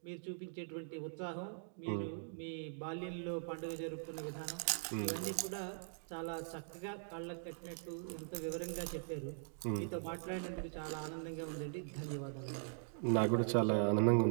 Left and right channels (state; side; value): silent; left; digital silence